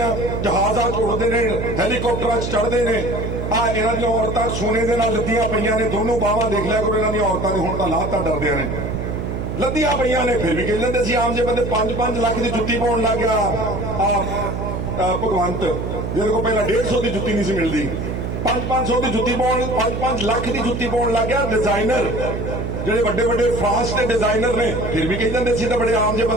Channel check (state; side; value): noise; right; hum, 4 dB below the sound